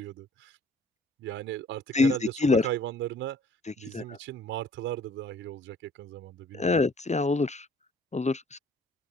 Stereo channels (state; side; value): normal; both; correlation 0.56